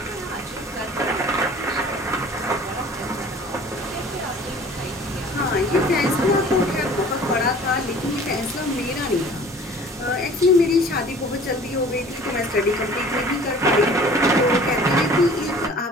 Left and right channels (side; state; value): both; normal; correlation 0.48